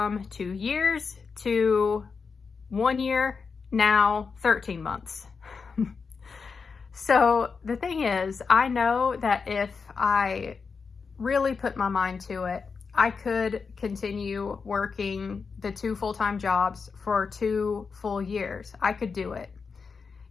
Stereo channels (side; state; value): right; quieter; 5.2 dB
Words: 2 years to 1 year, now 13 months. So the thing is, I know that if I really put my mind to it, I could continue working the 2 full-time jobs for 2 full years. I could do it.